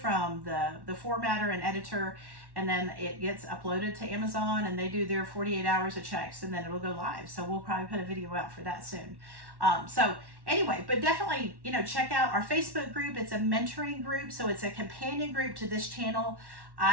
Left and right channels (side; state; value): left; late; 1.1 ms